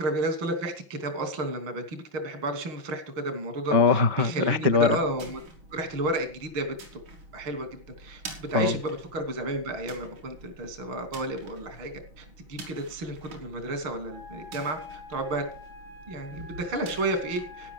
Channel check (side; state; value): left; late; 5.9 ms